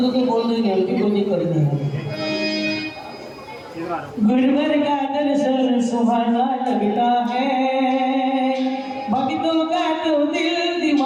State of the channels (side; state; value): both; identical; correlation 1.00